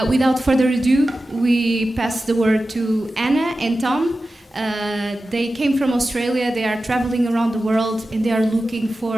Without further ado, we pass the word to Anna and Tom. They came from Australia, they are traveling around the world, and they are looking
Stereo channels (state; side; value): normal; both; correlation 0.93